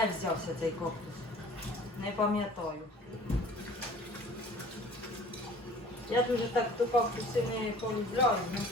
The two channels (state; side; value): normal; both; correlation 0.48